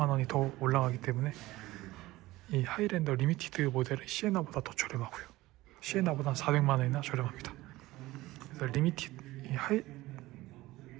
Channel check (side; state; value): left; quieter; 18.2 dB